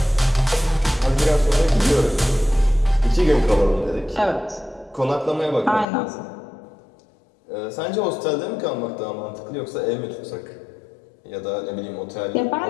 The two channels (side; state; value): right; drops out; at 5.9 s